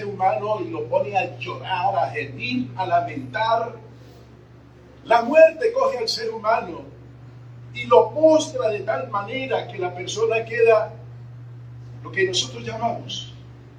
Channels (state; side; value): identical; both; correlation 1.00